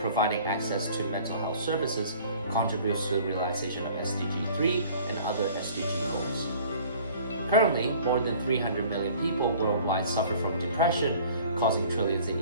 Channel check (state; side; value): inverted; both; correlation -0.50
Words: access to mental health services contributes to the realization of SDG 3 and other SDG goals. Currently, more than 300 million people worldwide suffer from depression, causing trillions in